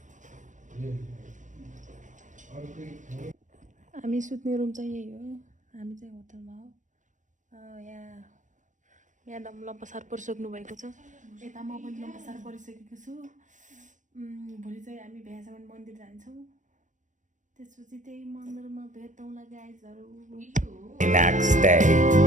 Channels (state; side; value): late; left; 0.36 ms